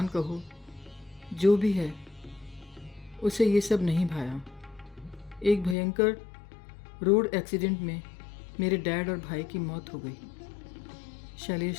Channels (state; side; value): drops out; right; at 5.8 s